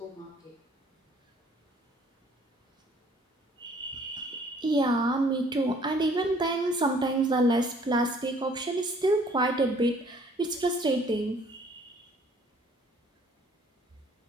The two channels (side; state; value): both; normal; correlation 0.58